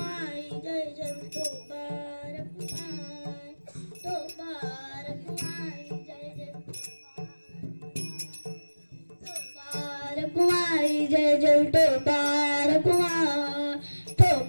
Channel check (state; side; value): inverted; both; correlation -1.00